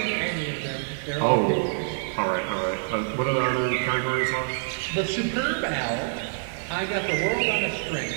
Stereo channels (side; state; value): left; silent; 59 dB below the other